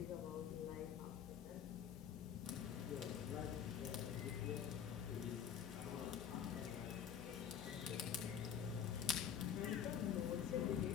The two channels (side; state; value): right; quieter; 8.3 dB